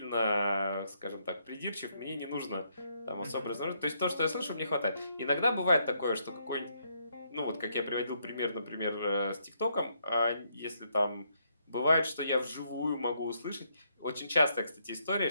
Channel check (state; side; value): inverted; both; correlation -0.75